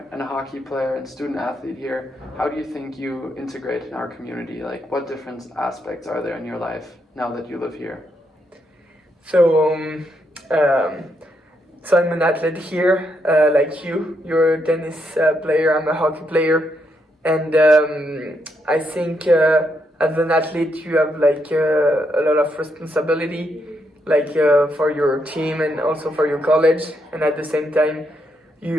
and a hockey player and student athlete here, how do you think you integrate in our community? Like, what different aspects are there in your life now that you live here? So I'm an athlete here, like you. You're a tennis player, I'm a hockey player. And I think as an athlete you have like a lot of responsibility, like for your team and also for your college. And at the same time,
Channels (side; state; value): both; normal; correlation 0.78